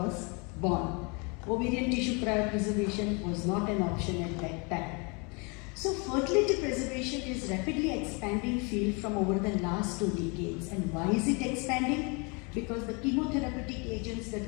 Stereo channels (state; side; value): quieter; right; 31.6 dB